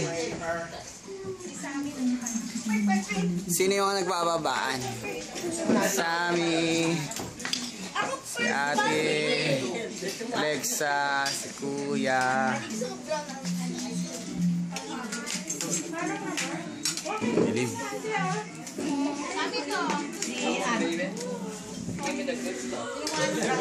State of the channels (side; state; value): both; identical; correlation 1.00